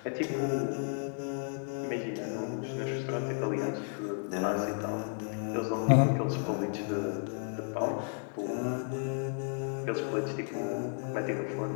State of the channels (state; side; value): silent; right; 56 dB below the other